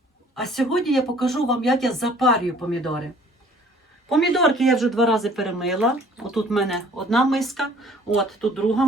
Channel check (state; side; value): normal; both; correlation 0.55